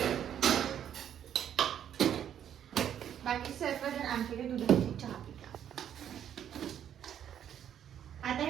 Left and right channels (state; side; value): quieter; left; 9.7 dB